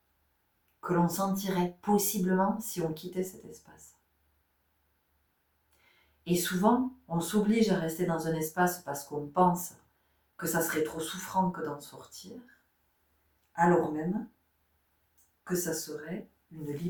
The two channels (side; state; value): both; identical; correlation 1.00